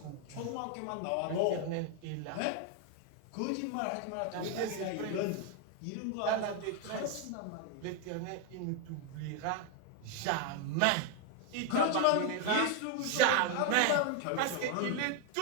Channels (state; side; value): different; both; correlation 0.01